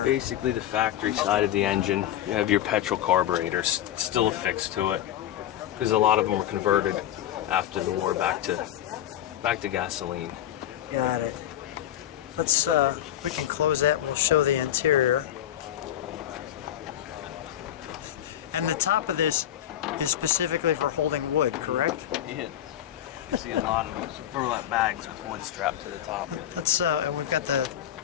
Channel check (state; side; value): quieter; right; 11.7 dB